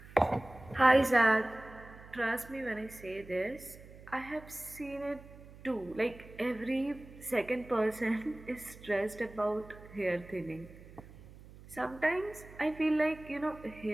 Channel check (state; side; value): noise; right; hum, 19 dB below the sound